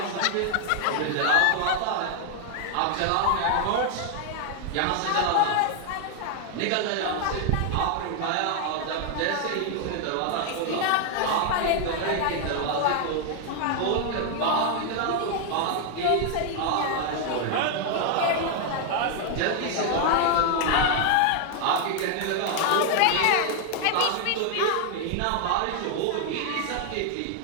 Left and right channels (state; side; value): different; both; correlation 0.00